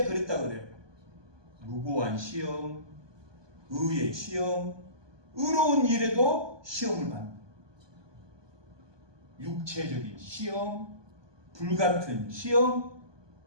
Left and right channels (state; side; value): late; left; 1.2 ms